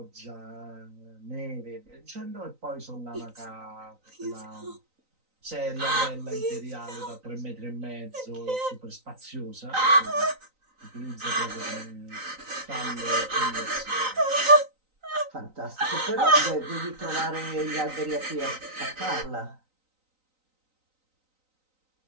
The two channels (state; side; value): late; left; 3.9 ms